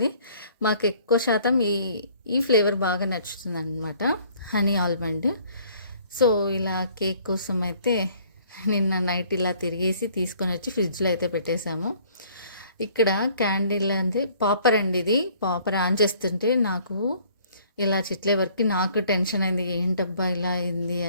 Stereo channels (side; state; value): both; inverted; correlation -0.57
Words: మాకు ఎక్కువ శాతం ఈ ఫ్లేవర్ బాగా నచ్చుతుంది అనమాట, హనీ ఆల్మండ్. సో ఇలా కేక్ కోసం అయితే నిన్న నైట్ ఇలా తిరిగేసి తీసుకొని వచ్చి ఫ్రిడ్జ్లో అయితే పెట్టేశాము. ఇక్కడ క్యాండిల్ అంటే పాపర్ అండి, ఇది పాపర్ ఆన్ చేస్తుంటే నాకు ఇలా చిట్లే వరకు నాకు టెన్షన్ అయింది, ఏంటబ్బా ఇలా అయింది